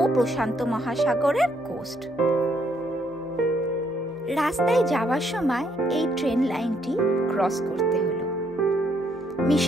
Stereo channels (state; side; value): normal; both; correlation 0.71